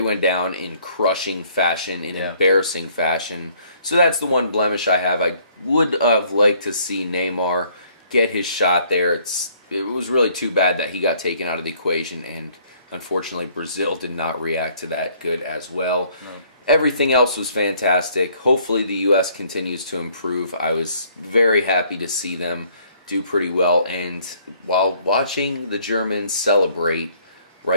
down in crushing fashion, in embarrassing fashion. So that's the one blemish I have. I would have liked to see Neymar get his shot there. It was really too bad that he got taken out of the equation, and unfortunately, Brazil did not react to that good as well. No. Everything else was fantastic. Hopefully, the U.S. continues to improve. I was very happy to see them do pretty well. And while watching the Germans celebrate,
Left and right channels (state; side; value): inverted; both; correlation -0.61